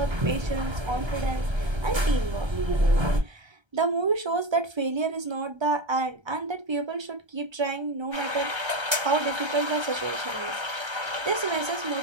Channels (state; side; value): late; left; 1.3 ms